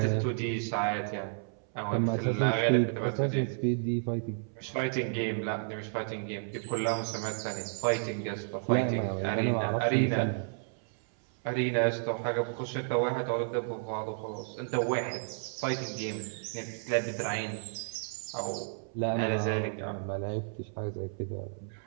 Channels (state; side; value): silent; left; 57 dB below the other